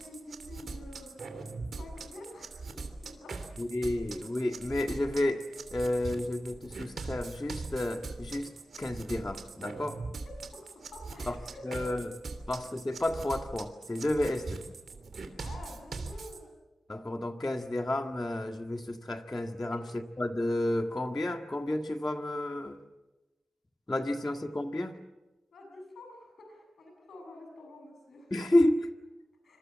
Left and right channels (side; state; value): both; normal; correlation 0.95